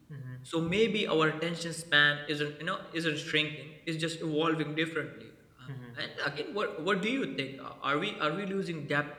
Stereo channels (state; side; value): identical; both; correlation 1.00